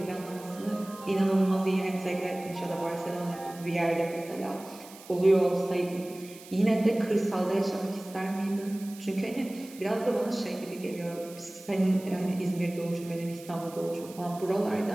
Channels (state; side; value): noise; right; hiss, 19 dB below the sound